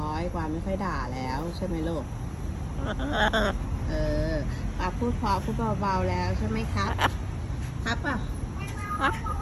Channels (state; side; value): identical; both; correlation 1.00